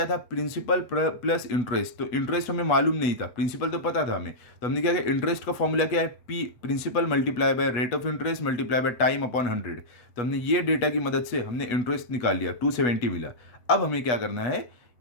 था, प्रिंसिपल प्लस इंटरेस्ट। तो इंटरेस्ट हमें मालूम नहीं था, प्रिंसिपल तो पता था हमें, तो हमने क्या किया, इंटरेस्ट का फॉर्मूला क्या है, P principal multiply by rate of interest multiply by time upon 100। तो हमने ये डेटा की मदद से हमने इंटरेस्ट निकाल लिया, 270 मिला। अब हमें क्या करना है,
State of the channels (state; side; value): late; right; 8.2 ms